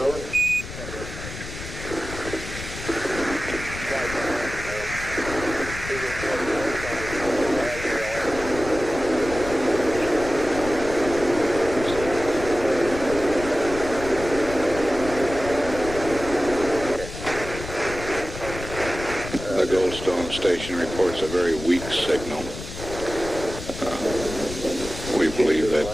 The Goldstone station reports a very weak signal. We believe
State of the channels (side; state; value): left; noise; rumble, 10 dB below the sound